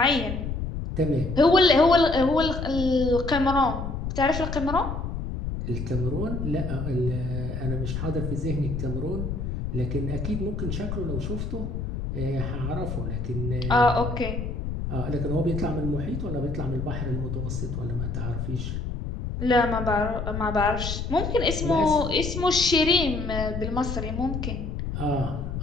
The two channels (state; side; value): noise; left; rumble, 4 dB below the sound